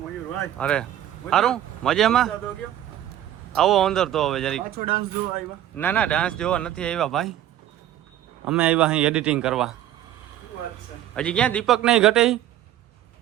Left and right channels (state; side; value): quieter; left; 12.2 dB